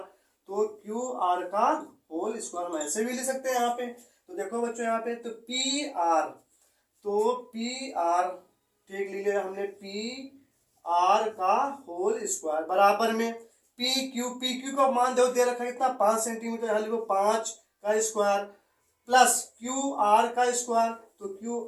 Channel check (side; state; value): both; identical; correlation 1.00